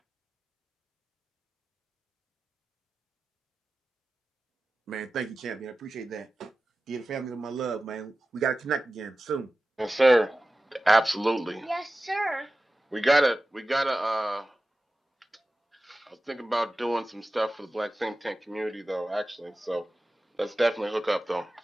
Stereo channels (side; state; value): both; normal; correlation 0.95